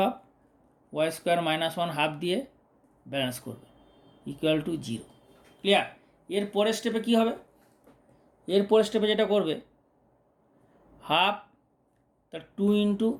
- 1 হাফ দিয়ে ব্যালেন্স করবে ইকুয়াল টু 0। ক্লিয়ার? এর পরের স্টেপে কী হবে, এর পরের স্টেপে যেটা করবে হাফ তার 2 ইন্টু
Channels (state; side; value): identical; both; correlation 1.00